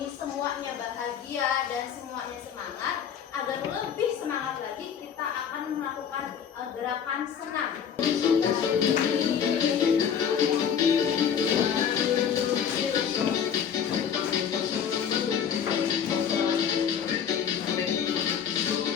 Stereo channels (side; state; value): right; quieter; 7.9 dB